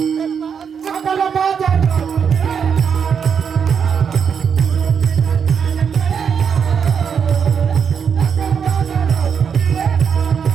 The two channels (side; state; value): left; quieter; 6.9 dB